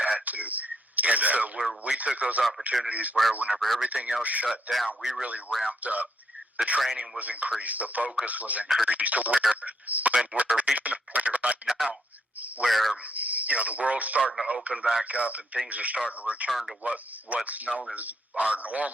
to. And so we took those opportunities where whenever everything else shut down, we really ramped up. The training was increased. The focus was increased to where when we're reaching a point right now where, the world's starting to open back up and things are starting to return to what's known as our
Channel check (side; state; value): both; normal; correlation 0.74